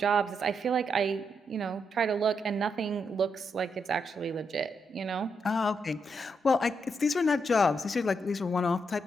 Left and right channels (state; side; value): normal; both; correlation 0.80